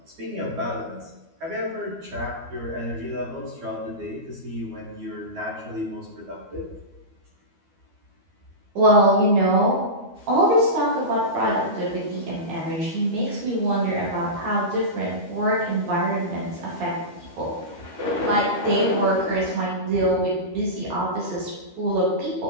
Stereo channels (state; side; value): late; left; 12 ms